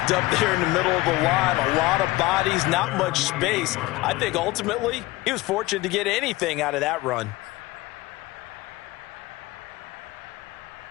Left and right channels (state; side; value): quieter; right; 19.6 dB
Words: up there in the middle of the line. A lot of bodies, not much space. I think ultimately he was fortunate to get anything out of that run.